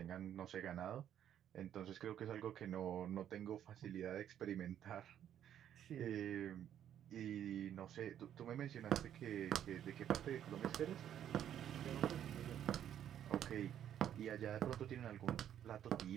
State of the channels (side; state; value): left; quieter; 10.3 dB